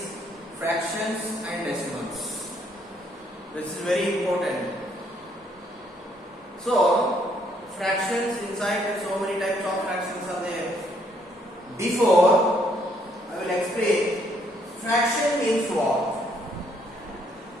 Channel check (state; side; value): normal; both; correlation 0.69